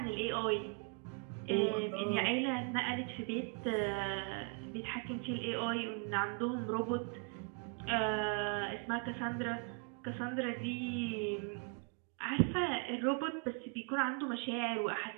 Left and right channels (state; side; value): quieter; left; 38.0 dB